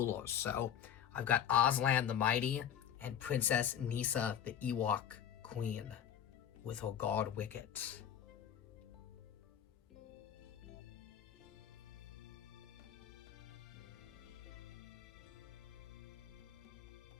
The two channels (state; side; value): quieter; right; 9.4 dB